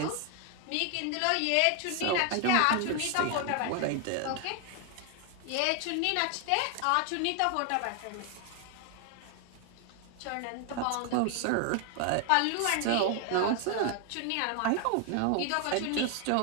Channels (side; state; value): both; different; correlation 0.00